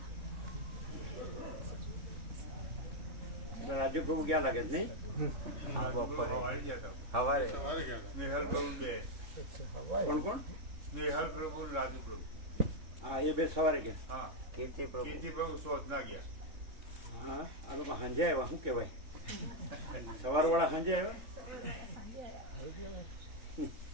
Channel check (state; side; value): late; left; 3.7 ms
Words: રાજુ પ્રભુ ક્યાં લાગે છે નહીં? હવારે સ્નેહલ પ્રભુ બે. કોણ કોણ? સ્નેહલ પ્રભુ રાજુ પ્રભુ. હા એ બે સવારે કે હા કીર્તિ પ્રભુ કીર્તિ પ્રભુ શોધ ના ગયા. હા આ લોકો સાંજે આવ્યા. શું કહેવાય? સવારવાળા સાંજે આવ્યા.